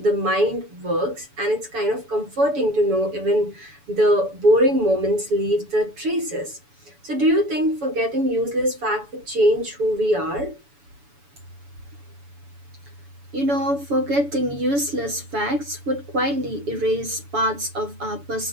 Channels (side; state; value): left; late; 7.0 ms